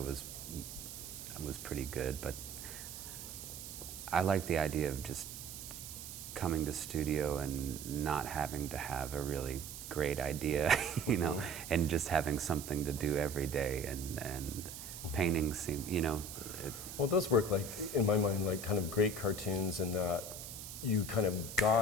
pretty good, but I like the idea of just coming to studio and not having to have a really great idea, you know, and just having something to do every day, and painting seem, you know. Well, those work like, in my mind, like kind of great cartoons in that you kind of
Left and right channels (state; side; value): noise; right; hiss, 10 dB below the sound